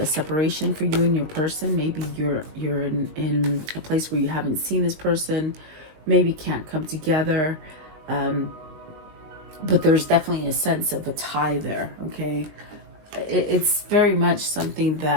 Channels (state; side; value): late; left; 20 ms